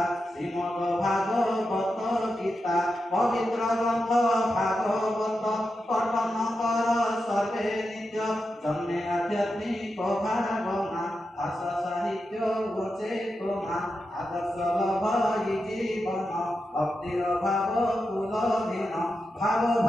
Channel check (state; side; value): normal; both; correlation 0.88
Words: श्रीमद भागवत गीता पवित्र ग्रंथ भागवत पठन कर सर्वे नित्य जन्मे आध्यात्मिक भावना भाषा साहित्य चेतना आदर्श लभई जीवन भक्तिर भाव कुलधीन भाव